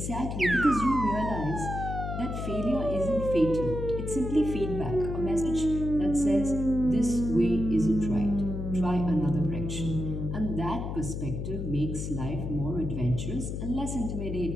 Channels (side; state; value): left; noise; hum, 4 dB below the sound